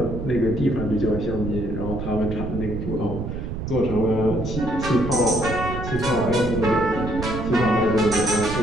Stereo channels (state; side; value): noise; right; rumble, 6 dB below the sound